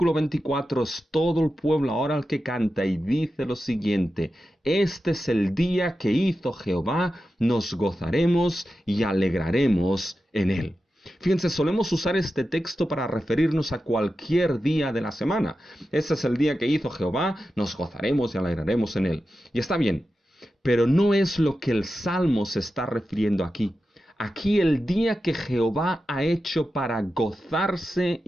24 es todo el pueblo ahora el que canta y dice lo siguiente: este es el día que hizo Jehová, nos gozaremos y alegraremos en él. Fíjense, solemos usar este texto para referirnos a cualquier día de la semana. Este es el día que hizo Jehová, nos gozaremos y alegraremos en él. Y está bien, pero no es lo que el Salmo se está refiriendo aquí. Aquí el día que Jehová ha hecho para gozarse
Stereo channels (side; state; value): both; normal; correlation 0.91